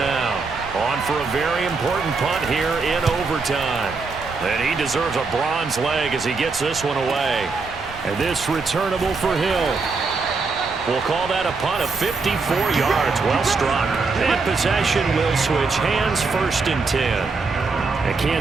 on for a very important punt here in overtime. And he deserves a bronze leg as he gets this one away. And this returnable for Hill. We'll call that a punt of 54 yards. Well struck. And possession will switch hands, 1st and 10. And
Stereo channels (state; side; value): quieter; left; 4.3 dB